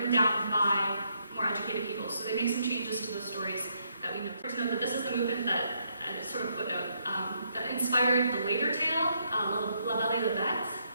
down by more educated people. So they make some changes to the stories that we know. To know that this is the movement that, sort of footnote, that inspired the later tale, La Belle et la Bête,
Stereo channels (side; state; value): both; inverted; correlation -0.75